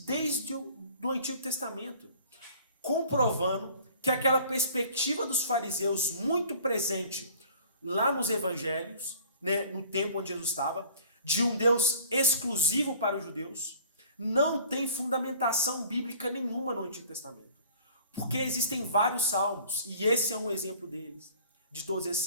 desde do Antigo Testamento, comprovando que aquela perspectiva dos fariseus muito presente lá nos evangelhos, né, no tempo onde Jesus estava, de um Deus exclusivo para os judeus, não tem fundamentação bíblica nenhuma no Antigo Testamento. Porque existem vários salmos, e esse é um exemplo deles, de todos esses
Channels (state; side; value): inverted; both; correlation -0.49